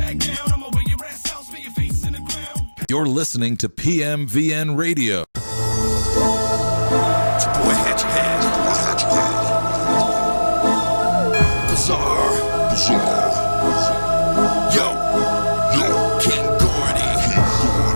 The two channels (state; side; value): inverted; both; correlation -1.00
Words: down. I'ma wear your ass out, spin your face in the ground. You're listening to PMVN Radio. It's your boy Hatchet Head. Bizarre. Yo, King Gordy.